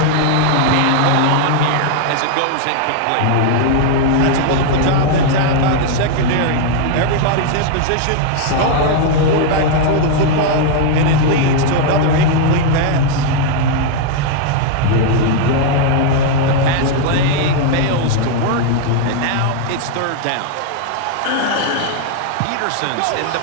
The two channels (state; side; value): different; both; correlation 0.00